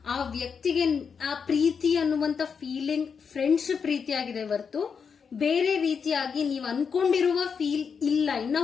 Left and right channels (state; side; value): quieter; right; 6.2 dB